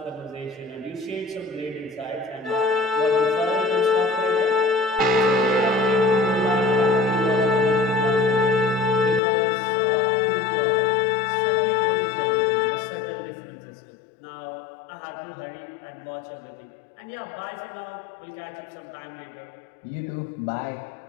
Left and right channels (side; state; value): right; drops out; at 9.2 s